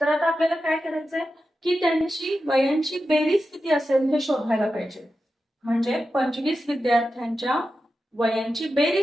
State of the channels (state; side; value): normal; both; correlation 0.91